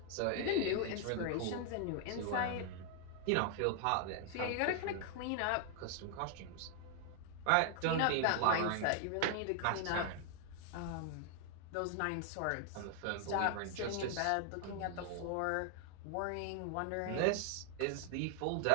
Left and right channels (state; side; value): different; both; correlation 0.00